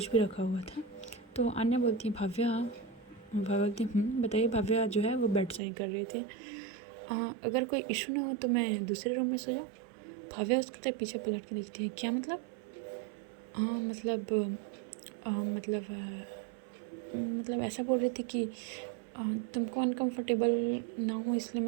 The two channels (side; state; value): left; drops out; at 5.6 s